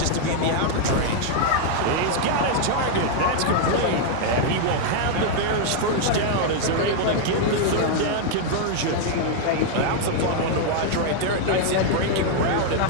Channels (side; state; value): both; different; correlation 0.00